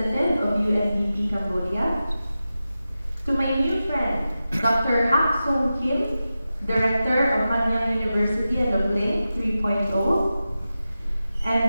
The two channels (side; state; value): both; inverted; correlation -0.93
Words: of UNDP Cambodia. To my new friend, Dr. Hak Song Kim, Director of Nanyang University and of Link 3.0,